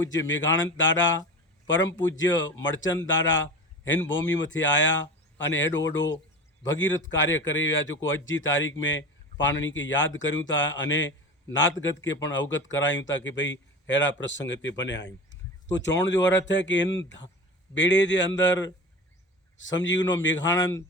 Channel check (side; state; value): both; normal; correlation 0.32